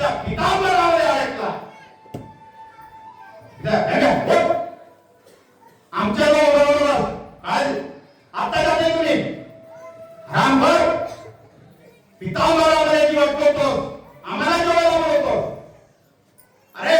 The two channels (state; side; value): identical; both; correlation 1.00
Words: पितांबरामध्ये अडकला. आमच्या बरोबर आज आता जाते तुम्ही रामभर पितांबरामध्ये जीव अडकवतो, आम्हाला जेवायला बोलवतो. अरे